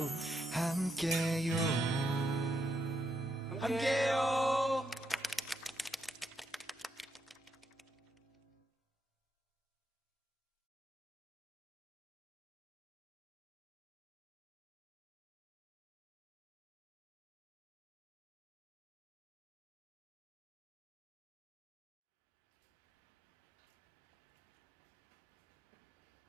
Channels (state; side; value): normal; both; correlation 0.80